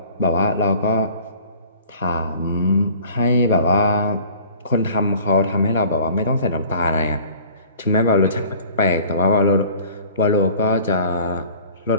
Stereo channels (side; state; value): both; inverted; correlation -0.48